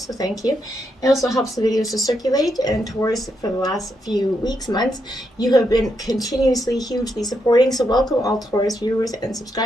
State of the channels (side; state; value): both; normal; correlation 0.81